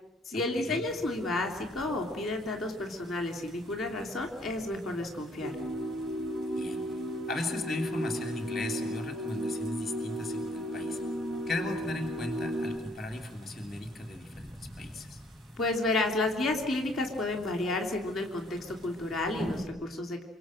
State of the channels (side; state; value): both; normal; correlation 0.63